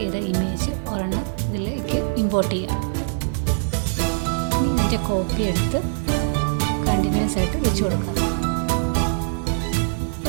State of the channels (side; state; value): left; silent; digital silence